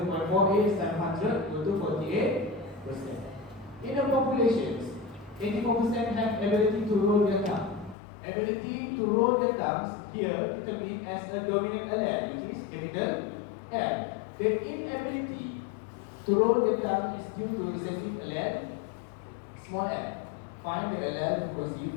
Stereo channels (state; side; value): drops out; right; at 8.0 s